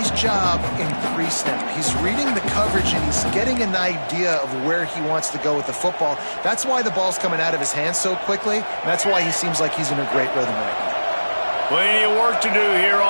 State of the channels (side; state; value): both; inverted; correlation -1.00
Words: job in pre-snap. He's reading the coverage, and he's getting an idea of where he wants to go with the football. That's why the ball's coming out of his hands so quickly. And that's why he seems like he's in a great rhythm right now. Plenty of work to do here